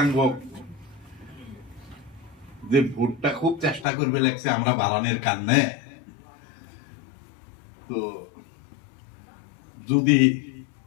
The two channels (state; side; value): drops out; right; at 3.9 s